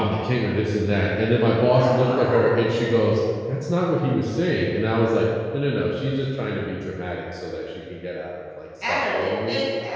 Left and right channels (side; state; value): both; identical; correlation 1.00